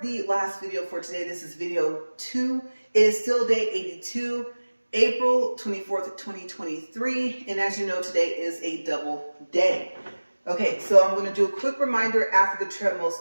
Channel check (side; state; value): both; inverted; correlation -1.00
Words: last video for today. This is video 2. It is still day 82, April 24th, 2023. And as you know, today is a double day. Okay, so I'm going to do a quick reminder after the treadmill